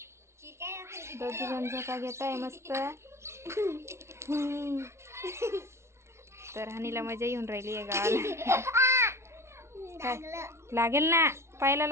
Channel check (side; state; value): left; late; 0.13 ms